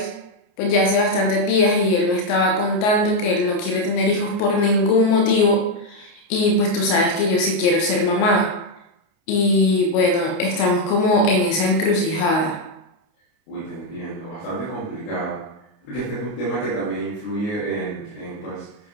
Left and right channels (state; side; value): late; right; 29 ms